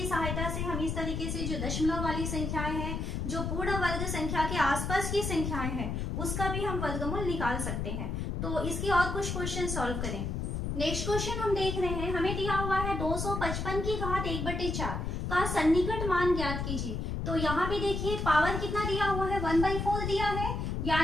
सहायता से हम इस तरीके से जो दशमलव वाली संख्याएं हैं, जो पूर्ण वर्ग संख्या के आसपास की संख्याएं हैं, उसका भी हम वर्गमूल निकाल सकते हैं। तो इसके और कुछ क्वेश्चन सॉल्व करें। नेक्स्ट क्वेश्चन हम देख रहे हैं, हमें दिया हुआ है 255 की घात 1/4 का सन्निकट मान ज्ञात कीजिए। तो यहाँ पे देखिए पावर कितना दिया हुआ है, 1/4 दिया है,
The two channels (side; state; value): left; noise; rumble, 2 dB below the sound